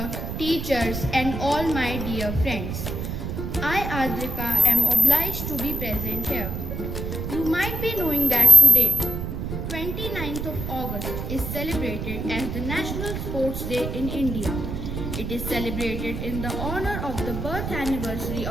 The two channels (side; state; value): right; noise; rumble, 5 dB below the sound